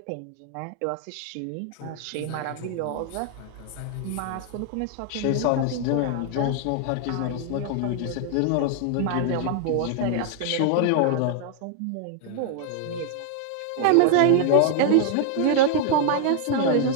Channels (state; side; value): different; both; correlation 0.00